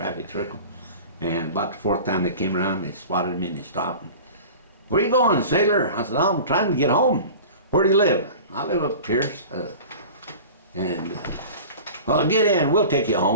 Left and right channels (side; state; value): both; inverted; correlation -0.38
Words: circle. And about the fourth time they came around, they spotted me and they stopped. And, where you going, sailor? I said, I'm trying to get home. Where do you live? I live up Pierce. Well, get in. We'll take you